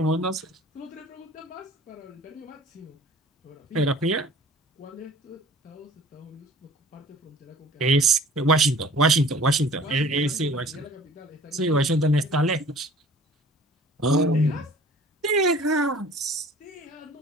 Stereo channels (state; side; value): normal; both; correlation 0.48